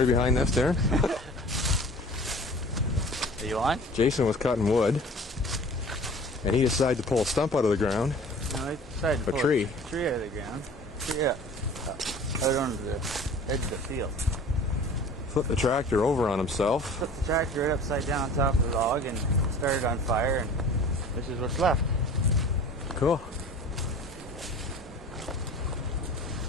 behind this, Darren? Are you on? Jason was cutting wood, and he decided to pull a stump out of the ground. No, I decided to pull a tree. A tree out of the ground. Yeah. Out onto the edge of the field. Flipped the tractor over on himself. Flipped the tractor right upside down on top of the log and started on fire, and this is what's left. Cool.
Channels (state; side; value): normal; both; correlation 0.44